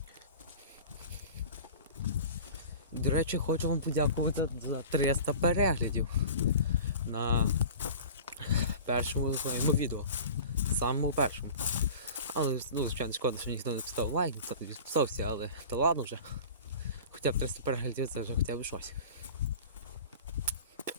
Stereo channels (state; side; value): inverted; both; correlation -0.38